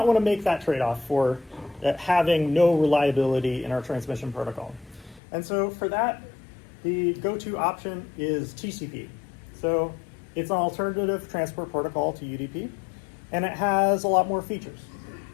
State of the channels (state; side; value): drops out; right; at 5.2 s